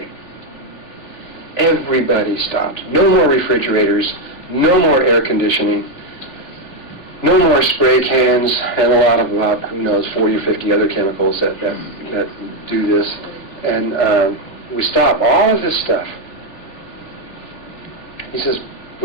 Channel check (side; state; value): right; late; 3.4 ms